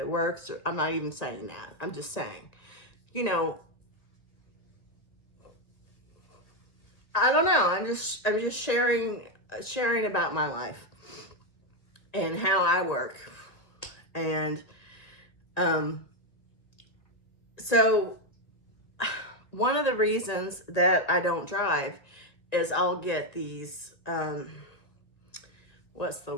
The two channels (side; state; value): right; late; 1.9 ms